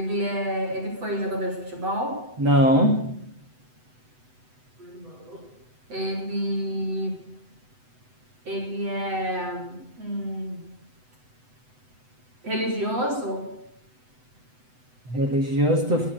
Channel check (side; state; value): left; late; 8.0 ms